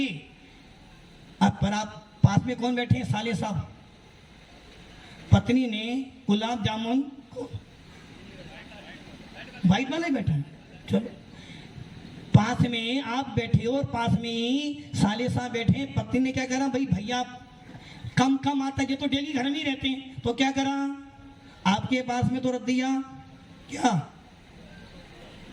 अब पर आप पास में कौन बैठे हैं? साले साहब। पत्नी ने गुलाब जामुन को वाइट वाला ही बैठा है, चलो पास में आप बैठे हो और पास में ही साले साहब बैठे हैं। पत्नी ने क्या करा? भाई भैया कम कम आता है, ये तो डेली घर में ही रहते हैं, तो क्या करा? आपके पास में तो रख दिया क्या?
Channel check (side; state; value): both; identical; correlation 1.00